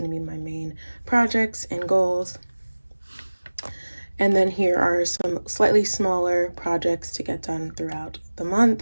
to be my main projects and goals. And then here are some slightly smaller projects to get done throughout the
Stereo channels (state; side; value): inverted; both; correlation -1.00